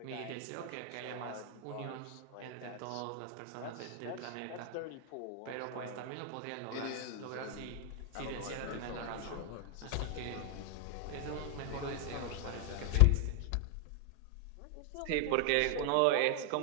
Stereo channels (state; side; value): different; both; correlation 0.00